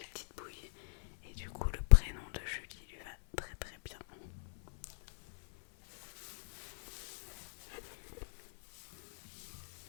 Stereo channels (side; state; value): right; silent; 53 dB below the other